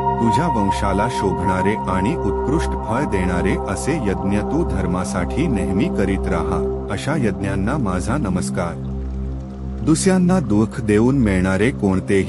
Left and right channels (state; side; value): identical; both; correlation 1.00